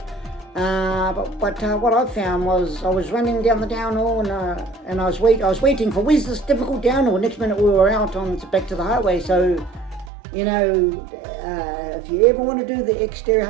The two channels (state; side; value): drops out; left; at 10.1 s